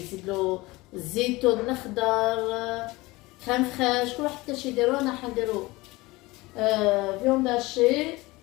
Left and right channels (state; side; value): quieter; right; 21.5 dB